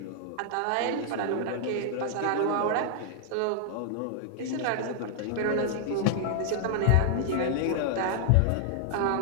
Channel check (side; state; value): both; different; correlation -0.01